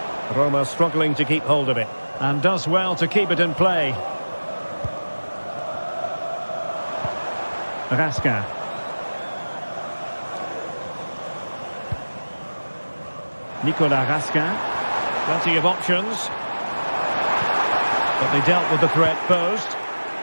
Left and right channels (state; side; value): inverted; both; correlation -1.00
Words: Roma struggling to keep hold of it, and does well to keep it in play. Raskin. Nicolas Raskin. Plenty of options. But they dealt with the threat posed.